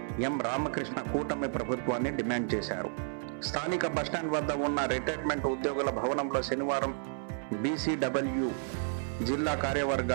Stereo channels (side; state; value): left; silent; 56 dB below the other